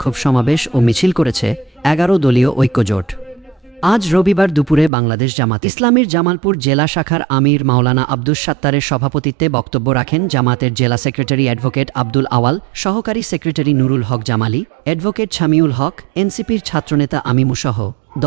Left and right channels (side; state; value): left; drops out; at 4.9 s